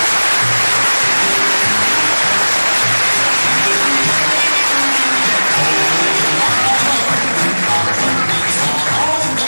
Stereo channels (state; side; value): inverted; both; correlation -1.00